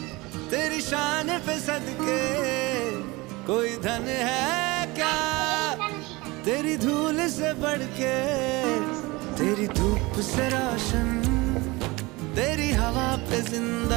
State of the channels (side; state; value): left; quieter; 23.0 dB